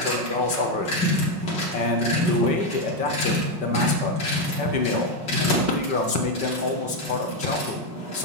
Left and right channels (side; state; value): left; late; 5.2 ms